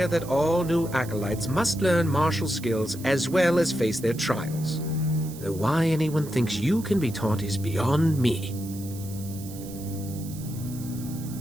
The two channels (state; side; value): noise; right; hiss, 16 dB below the sound